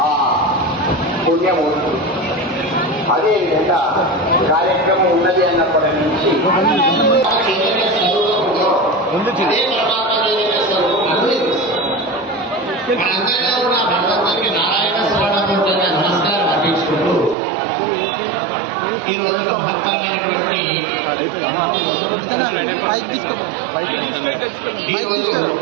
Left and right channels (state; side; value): drops out; left; at 17.4 s